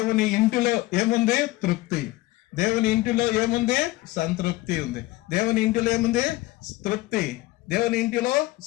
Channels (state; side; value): quieter; right; 18.4 dB